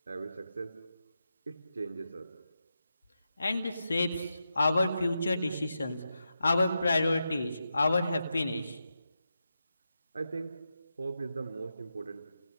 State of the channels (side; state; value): both; inverted; correlation -0.88